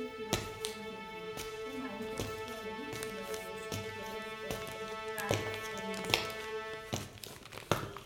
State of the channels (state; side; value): identical; both; correlation 1.00